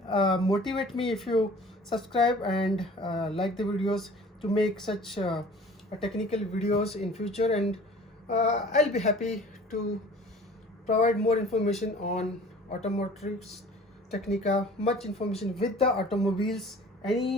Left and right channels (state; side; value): normal; both; correlation 0.47